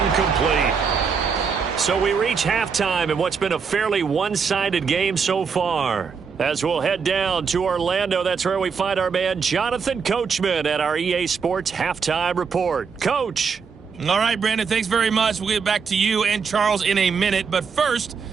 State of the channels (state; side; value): quieter; left; 5.8 dB